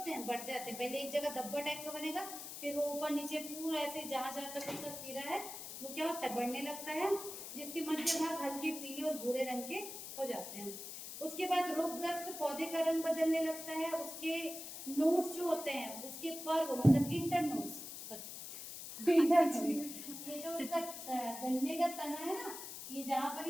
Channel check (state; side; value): noise; left; hiss, 9 dB below the sound